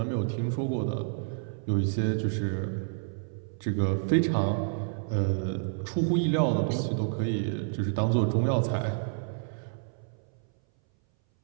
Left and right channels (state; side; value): silent; left; 58 dB below the other